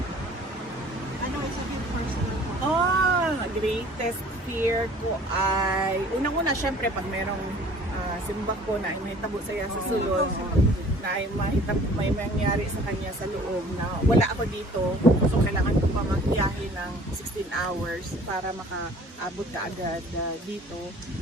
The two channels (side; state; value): both; normal; correlation 0.51